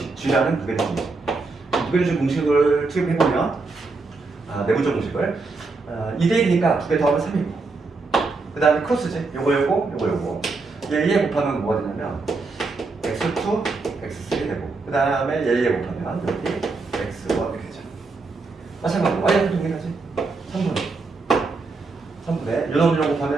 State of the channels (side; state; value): left; quieter; 3.9 dB